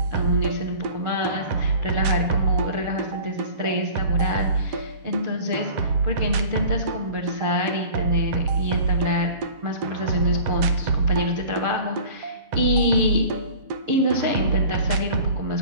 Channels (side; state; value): left; late; 7.6 ms